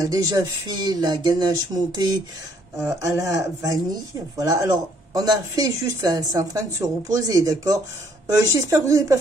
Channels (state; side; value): normal; both; correlation 0.65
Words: déjà fait la ganache montée à la vanille. Voilà, alors on a fait juste là, c'est en train de se reposer, d'accord. J'espère que vous n'avez pas